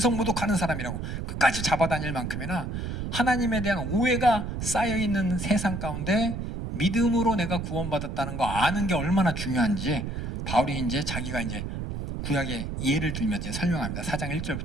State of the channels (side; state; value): right; noise; rumble, 4 dB below the sound